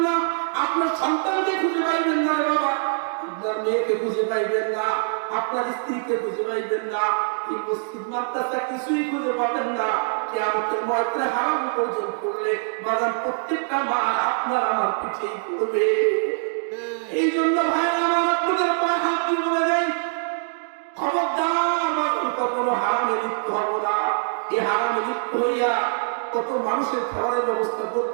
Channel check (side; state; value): left; silent; digital silence